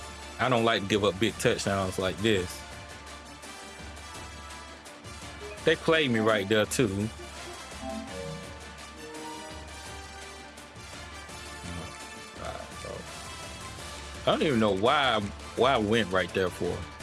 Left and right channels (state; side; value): identical; both; correlation 1.00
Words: I don't like to give up big touchdowns like this. They played me right there too. I don't even know why I went right there for.